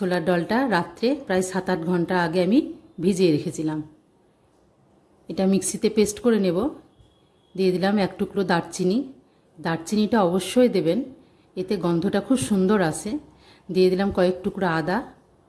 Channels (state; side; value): identical; both; correlation 1.00